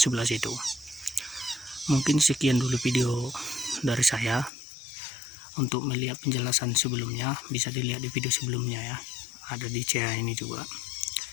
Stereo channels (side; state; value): right; drops out; at 4.5 s